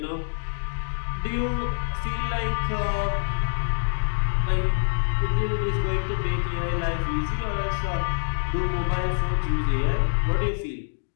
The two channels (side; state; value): right; silent; digital silence